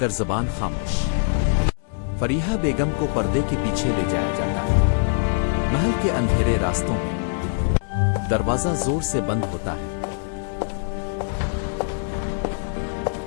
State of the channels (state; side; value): silent; right; digital silence